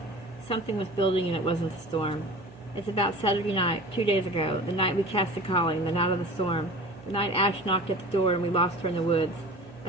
Something was building and it wasn't a storm. It's about Saturday night, 2 days ago, the night we cast the calling, the night of the storm, the night Ash knocked at the door and we lost her in the woods.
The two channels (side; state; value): right; noise; hum, 21 dB below the sound